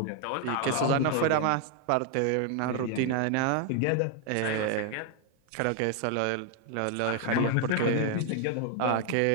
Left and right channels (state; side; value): different; both; correlation 0.00